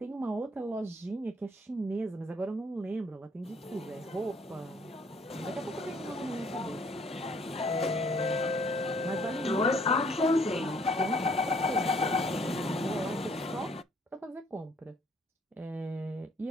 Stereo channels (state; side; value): normal; both; correlation 0.62